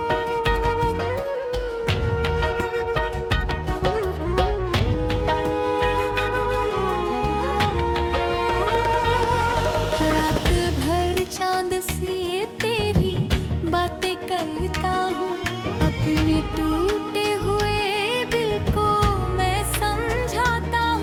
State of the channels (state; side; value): identical; both; correlation 1.00